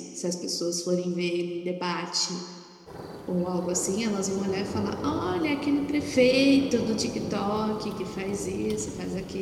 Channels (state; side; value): identical; both; correlation 1.00